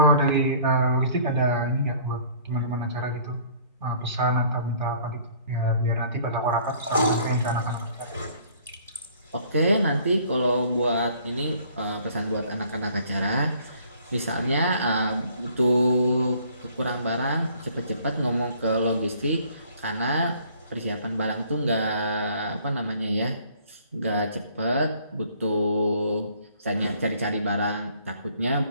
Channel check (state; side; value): inverted; both; correlation -0.56